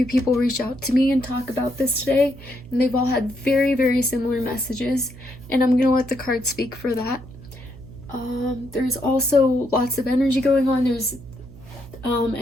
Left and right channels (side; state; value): right; noise; hum, 18 dB below the sound